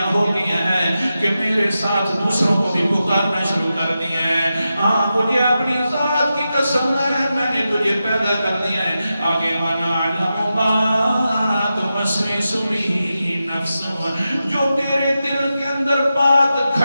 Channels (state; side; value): inverted; both; correlation -0.90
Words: ہو گیا ہے کہ میرے ساتھ دوسروں کو بھی پکارنا شروع کر دیا ہے. ہاں مجھے اپنی ذات کی قسم ہے میں نے تجھے پیدا کر دیا ہے. آگے وَنَعْلَمُ مَا تُوَسْوِسُ بِهِ نَفْسُهُ، جو تیرے دل کے اندر بات